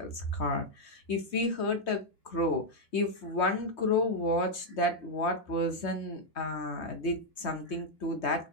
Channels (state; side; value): late; right; 3.2 ms